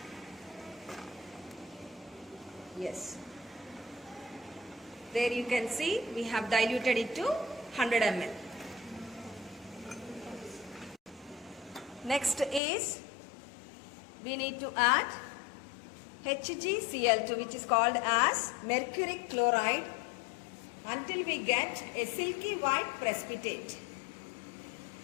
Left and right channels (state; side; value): drops out; right; at 12.6 s